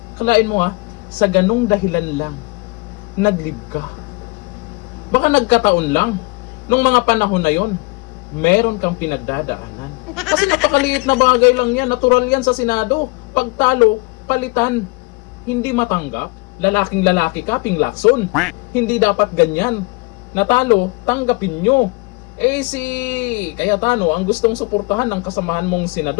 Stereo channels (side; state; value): right; quieter; 27.7 dB